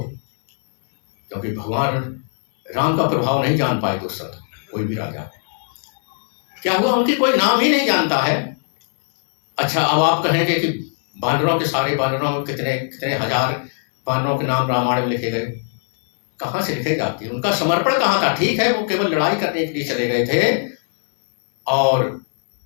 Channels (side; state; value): right; silent; 60 dB below the other